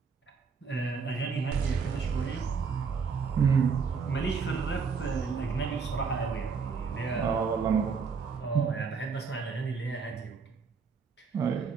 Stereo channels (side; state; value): left; quieter; 5.5 dB